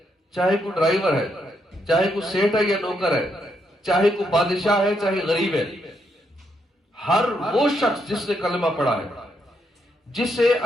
چاہے کوئی ڈرائیور ہے، چاہے کوئی سیٹ ہے یا نوکر ہے، چاہے کوئی بادشاہ ہے چاہے غریب ہے، ہر وہ شخص جس نے کلمہ پڑھا ہے، جسے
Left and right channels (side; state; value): both; normal; correlation 0.78